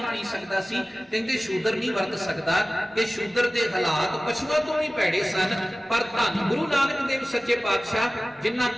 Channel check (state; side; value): normal; both; correlation 0.97